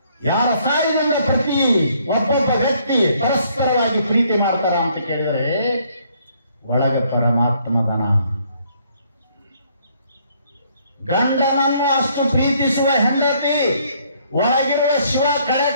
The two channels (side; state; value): both; inverted; correlation -0.66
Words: ಯಾರ ಸಹಾಯದಿಂದ ಪ್ರತಿ ಒಬ್ಬೊಬ್ಬ ವ್ಯಕ್ತಿ ಪರಸ್ಪರವಾಗಿ ಪ್ರೀತಿ ಮಾಡ್ತಾರ ಅಂತ ಕೇಳಿದರೆ ಒಳಗೆ ಪರಮಾತ್ಮದನ. ಗಂಡನನ್ನು ಅಷ್ಟು ಪ್ರೀತಿಸುವ ಹೆಂಡತಿ ಒಳಗಿರುವ ಶಿವ ಕಳೆ